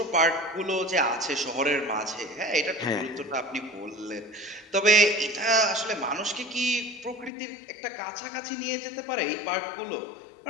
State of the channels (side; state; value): right; drops out; at 7.3 s